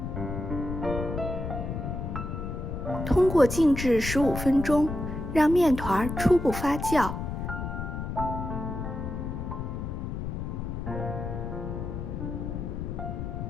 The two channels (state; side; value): noise; left; rumble, 5 dB below the sound